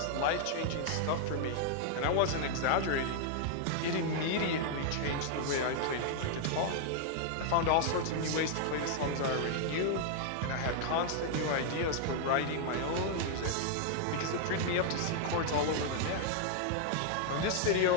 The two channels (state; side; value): different; both; correlation 0.00